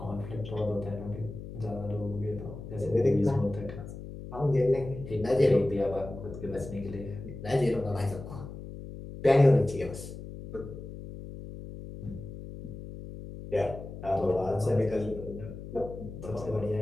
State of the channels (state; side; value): noise; left; hum, 11 dB below the sound